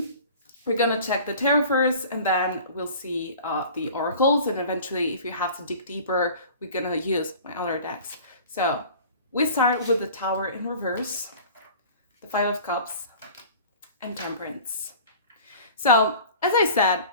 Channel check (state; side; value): inverted; both; correlation -0.43